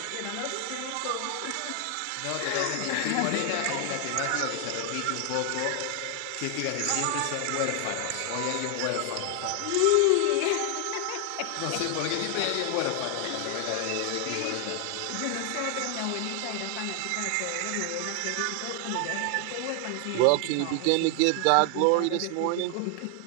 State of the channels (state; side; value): different; both; correlation 0.00